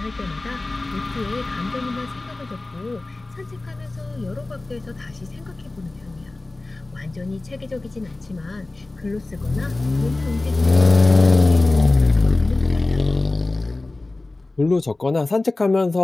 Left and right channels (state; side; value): quieter; right; 3.0 dB